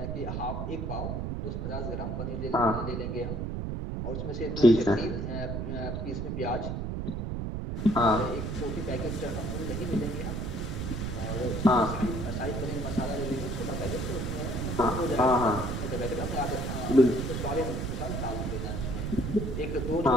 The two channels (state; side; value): noise; right; rumble, 3 dB below the sound